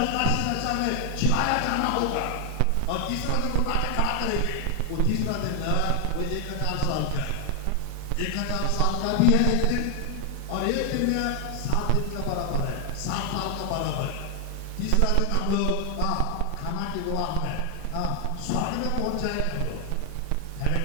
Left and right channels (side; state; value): both; different; correlation 0.00